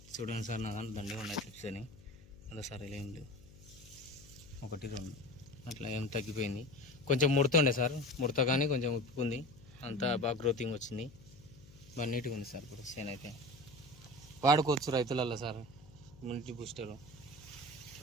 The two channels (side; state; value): left; noise; hum, 21 dB below the sound